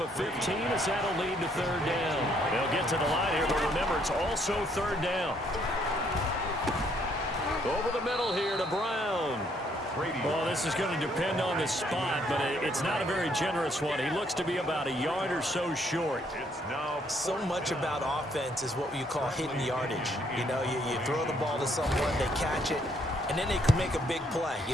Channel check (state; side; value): normal; both; correlation 0.69